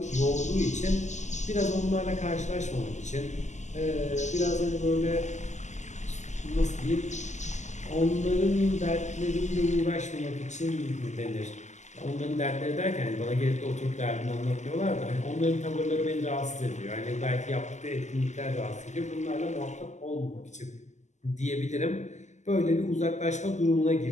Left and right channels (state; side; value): late; right; 0.34 ms